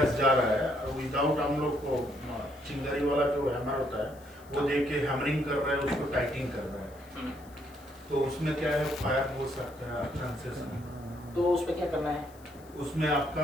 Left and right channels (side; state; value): left; noise; hiss, 26 dB below the sound